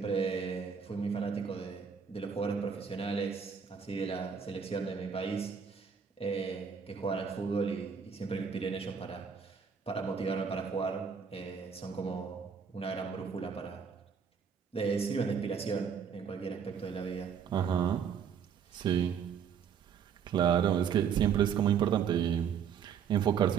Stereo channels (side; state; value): left; quieter; 7.0 dB